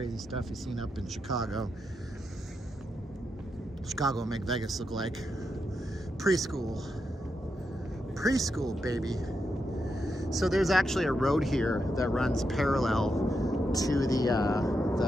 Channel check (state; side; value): normal; both; correlation 0.85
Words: stuff he's seen up in Chicago. Chicago will make Vegas look like preschool. Preschool, baby. So there's actually a road here that runs parallel to the